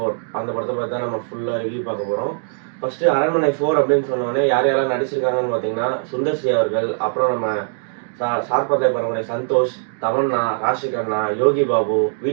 அந்த படத்தை பத்தி தான் நம்ம ஃபுல்லா ரிவ்யூ பார்க்க போறோம். ஃபர்ஸ்ட் அரண்மனை 4 அப்படின்னு சொன்னோடனே யார் யாரெல்லாம் நடிச்சிருக்காங்கன்னு பார்த்தீங்கன்னா, சுந்தர் சி அவர்கள், அப்புறம் நம்ம சார்பத்தை பரம்பரை சந்தோஷ், தமன்னா, ராஷி கண்ணா, யோகி பாபு,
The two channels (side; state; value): left; silent; digital silence